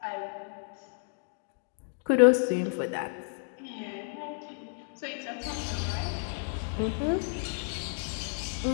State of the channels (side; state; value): right; silent; 57 dB below the other